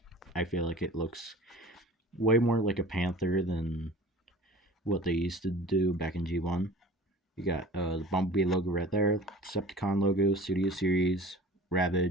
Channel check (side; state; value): both; normal; correlation 0.42